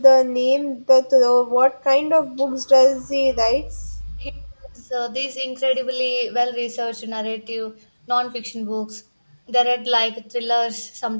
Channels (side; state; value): both; inverted; correlation -1.00